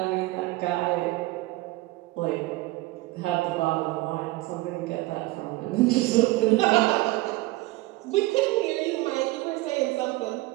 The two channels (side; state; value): left; quieter; 19.7 dB